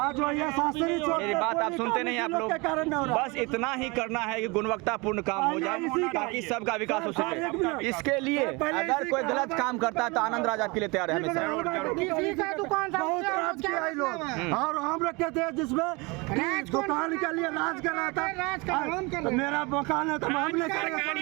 वो ये शास्त्री चौक मेरी पे बात कोई आप सुनते नहीं, आप काम लोग के कारण नहीं हो रहा। बस इतना ही करना है कि गुणवत्तापूर्ण काम हो जाए ताकि सबका विकास हो सके। इसके लिए अगर कोई गलत काम करता है तो आनंद राज आपके लिए तैयार है हमेशा। किसी का दुकान था बहुत राज किया है लोग, और हम रखे थे जिसमें दुकान के लिए राज कर रहा था। मेरा मकान है तो हम नहीं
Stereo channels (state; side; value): quieter; left; 26.8 dB